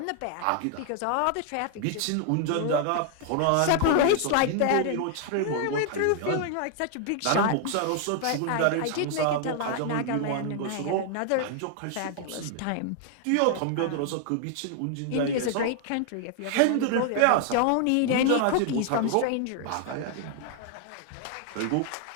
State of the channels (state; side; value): different; both; correlation 0.00